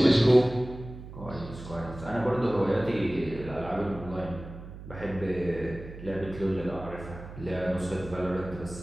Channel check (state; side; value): noise; right; hum, 13 dB below the sound